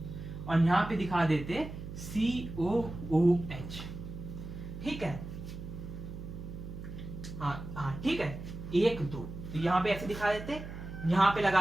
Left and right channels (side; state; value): right; noise; hum, 10 dB below the sound